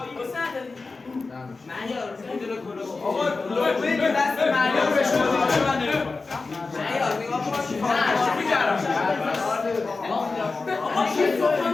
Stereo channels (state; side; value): quieter; right; 3.9 dB